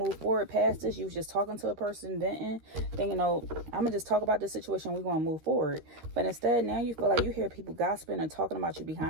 forward past this. You was just talking to a person, venting. Thinking, oh, I'm going to just talk about this situation. We're going to move forward. But instead, now you feel like you hear people gossiping and talking about you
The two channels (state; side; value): late; left; 13 ms